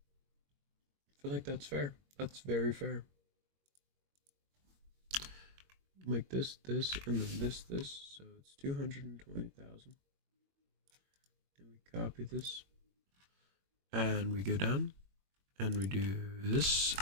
feel like that's fair. That's very fair. Make this, and then this. So it's 220,000. And we copy this. And we go down. And we do this.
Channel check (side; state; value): left; late; 21 ms